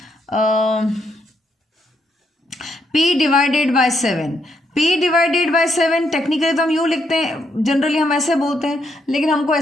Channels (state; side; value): normal; both; correlation 0.77